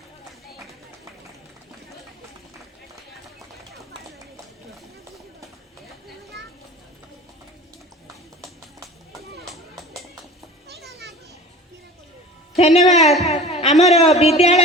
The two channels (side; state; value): both; normal; correlation 0.40